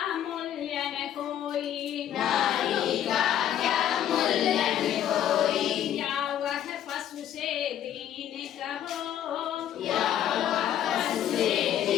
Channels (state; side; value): quieter; right; 10.7 dB